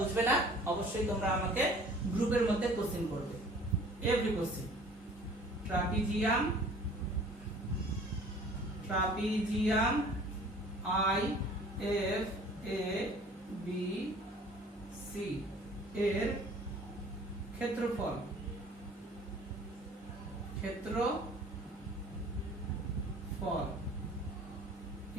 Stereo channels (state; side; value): normal; both; correlation 0.50